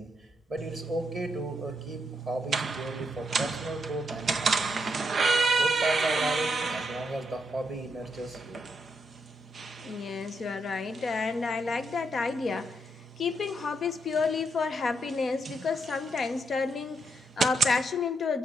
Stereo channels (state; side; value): normal; both; correlation 0.79